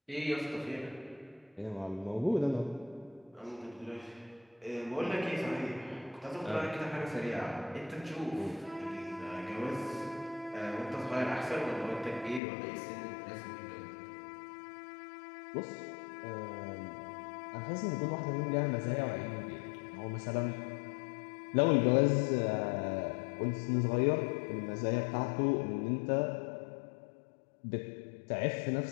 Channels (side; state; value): right; drops out; at 12.4 s